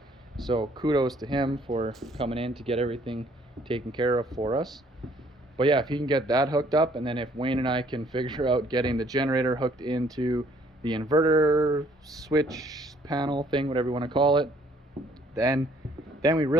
So kudos to him for coming in to get everything taken care of for us. But yeah, if he can get that hooked up, and then if Wayne and I can figure out getting the generator hooked into the inverter switch panel thing, whatever you want to call it, then we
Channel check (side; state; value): both; normal; correlation 0.62